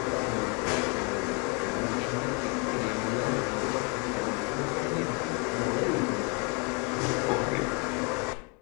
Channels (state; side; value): quieter; right; 32.5 dB